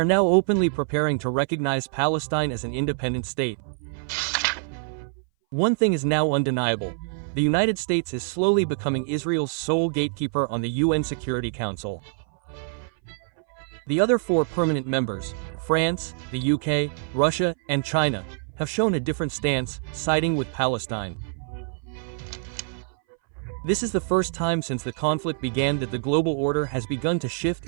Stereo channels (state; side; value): silent; left; 59 dB below the other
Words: now openly preparing to recognize Palestine as an independent state. One thing is now undeniable. The United States is slowly becoming Israel's sole gatekeeper on the UN Security Council. The other 4 permanent members, France, the UK, Russia, and China, have shown a different stance, siding with Palestine. This is the first time since the conflict began that the global order has begun to shift